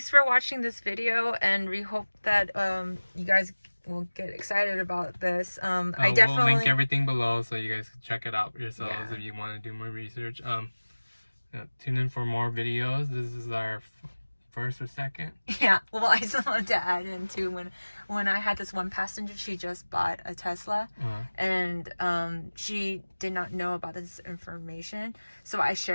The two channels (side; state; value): both; inverted; correlation -1.00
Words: for watching this video, and we hope that you guys will get excited about this. I definitely will link everything below so you guys can check it out yourselves if you want to do more research. Tune in for more videos. This is our first or second. Yeah, well, I just wanted to add in too, when I had this one passenger, she just bought a Tesla, and she did not know about this information, so I